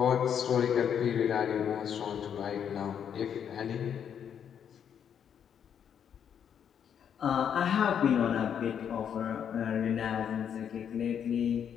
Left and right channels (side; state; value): right; quieter; 8.4 dB